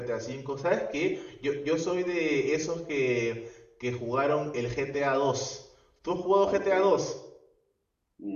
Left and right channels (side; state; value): both; identical; correlation 1.00